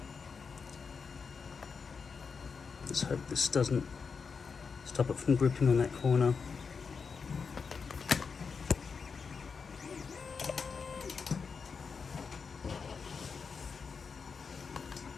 Let's hope this doesn't stop it from gripping on that corner.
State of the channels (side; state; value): right; quieter; 5.5 dB